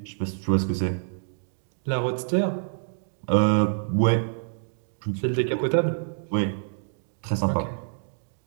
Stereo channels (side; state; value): left; silent; digital silence